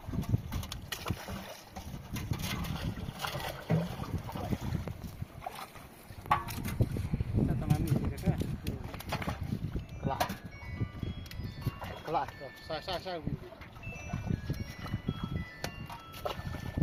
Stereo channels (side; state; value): both; identical; correlation 1.00